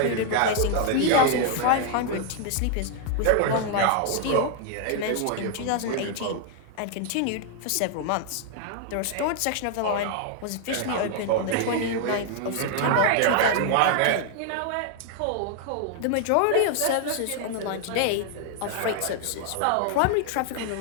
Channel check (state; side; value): different; both; correlation 0.00